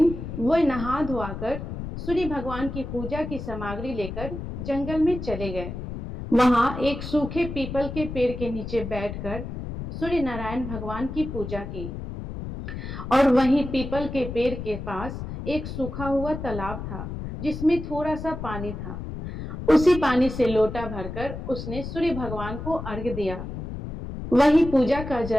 वह नहा धोआकर सूर्य भगवान की पूजा की सामग्री लेकर जंगल में चले गए। वहां एक सूखे पीपल के पेड़ के नीचे बैठकर सूर्य नारायण भगवान की पूजा की, और वहीं पीपल के पेड़ के पास एक सूखा हुआ तालाब था जिसमें थोड़ा सा पानी था। उसी पानी से लोटा भरकर उसने सूर्य भगवान को अर्घ्य दिया। वही पूजा का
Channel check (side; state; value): left; noise; rumble, 7 dB below the sound